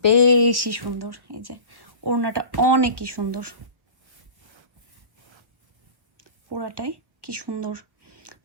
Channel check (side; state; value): left; late; 1.1 ms